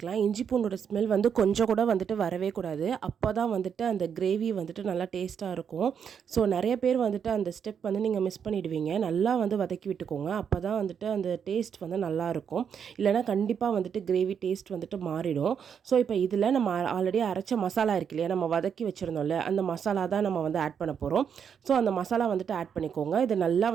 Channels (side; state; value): left; quieter; 7.5 dB